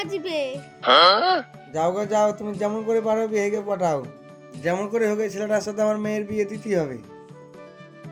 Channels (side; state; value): both; identical; correlation 1.00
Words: যাও গো যাও, তুমি যেমন করে পারো বিহাইকে পাঠাও। যেমন করে হোক এই ছেলেটার সাথে আমার মেয়ের বিয়ে দিতেই হবে।